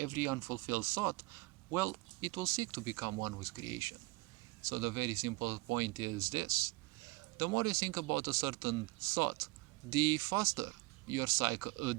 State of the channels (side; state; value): left; quieter; 23.3 dB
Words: unfulfilled thought, well, it will seek to become one with creation. So the very simple point is this: the more you think about a certain thought, the faster